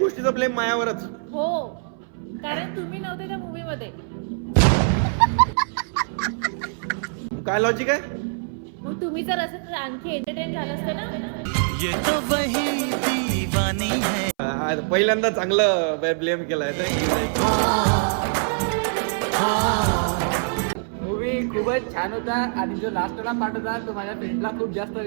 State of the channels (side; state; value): left; silent; 60 dB below the other